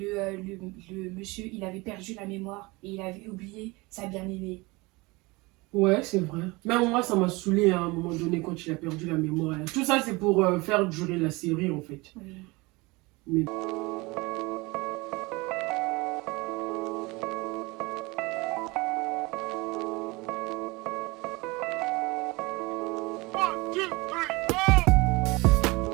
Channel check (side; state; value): left; quieter; 24.1 dB